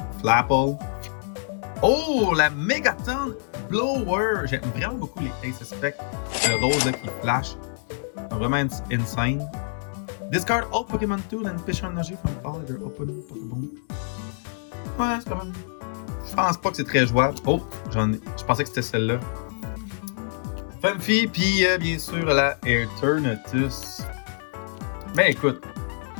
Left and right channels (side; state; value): right; silent; digital silence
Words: Flapple. Oh, la Megaton Blower! J'aime vraiment beaucoup les Ace Spec. Le rose là, qui flash. Vraiment insane. Discard all Pokémon Tool and Fish Energy from all other open Pokéball. Ouais, c'est quand même. Je pense pas que c'est très jouable. Oh, je pensais que c'était celle-là. Funfi, puis bien sûr la Eternatus. Ben écoute,